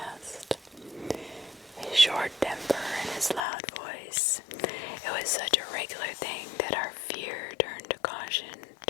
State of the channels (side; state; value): right; drops out; at 3.4 s